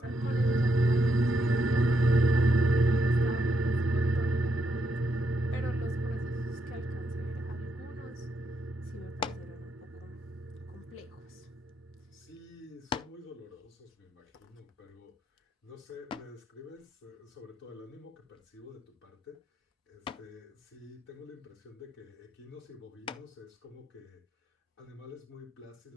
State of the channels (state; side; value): normal; both; correlation 0.78